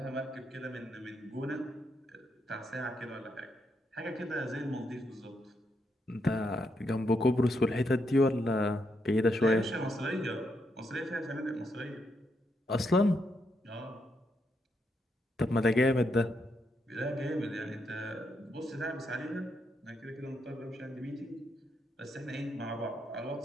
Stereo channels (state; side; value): normal; both; correlation 0.79